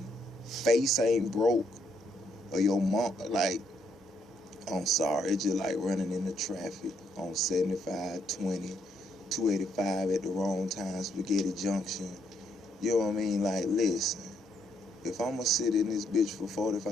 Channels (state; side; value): normal; both; correlation 0.74